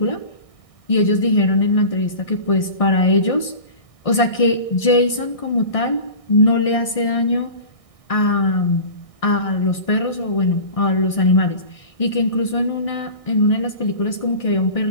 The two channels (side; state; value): right; late; 1.6 ms